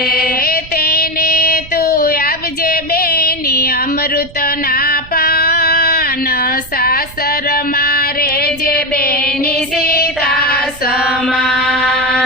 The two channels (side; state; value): right; noise; rumble, 18 dB below the sound